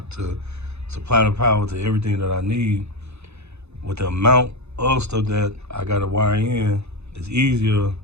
to supply the power to everything that I need, with the amount of stuff that I gotta wire in, it's easier,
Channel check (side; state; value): left; late; 0.81 ms